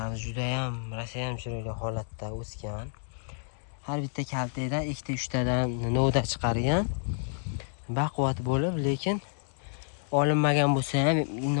juda ham rasayam chiroyli holatda o'sgan. Har bitta kaltadan 2-3 tadan novda chiqargan. Baquvvat bo'lib, lekin olinmagan bo'lsa ham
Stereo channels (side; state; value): right; silent; digital silence